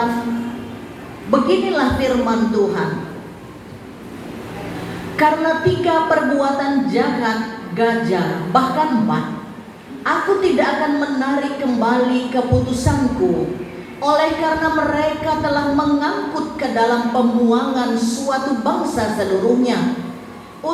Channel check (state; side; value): identical; both; correlation 1.00